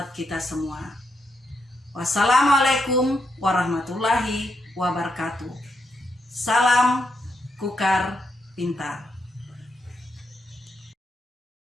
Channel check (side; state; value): both; normal; correlation 0.81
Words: kita semua. Wassalamualaikum warahmatullahi wabarakatuh. Salam Kukar Pintar.